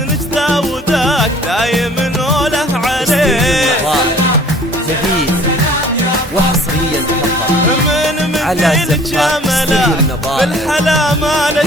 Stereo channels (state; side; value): normal; both; correlation 0.52